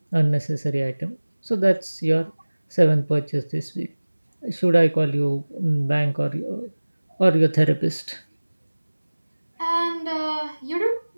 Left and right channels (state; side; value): inverted; both; correlation -1.00